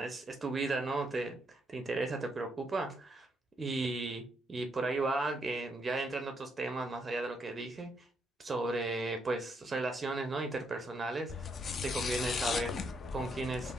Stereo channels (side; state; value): both; normal; correlation 0.76